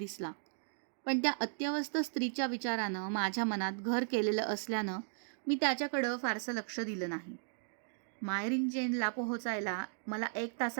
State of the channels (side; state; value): left; silent; digital silence